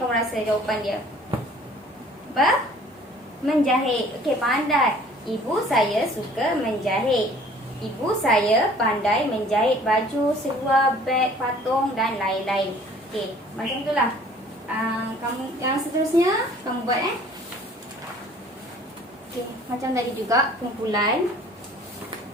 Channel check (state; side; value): normal; both; correlation 0.52